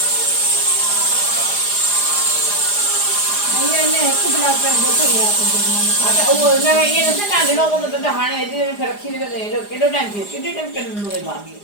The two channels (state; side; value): late; right; 4.9 ms